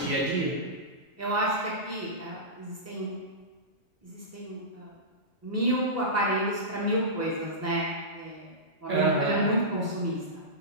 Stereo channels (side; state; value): both; normal; correlation -0.17